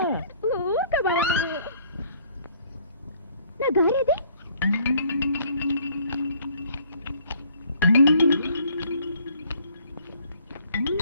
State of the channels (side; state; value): both; inverted; correlation -0.59